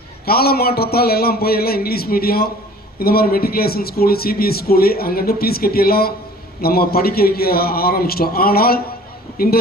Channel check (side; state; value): both; normal; correlation 0.48